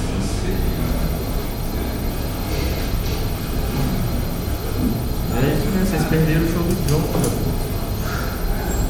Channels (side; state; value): both; identical; correlation 1.00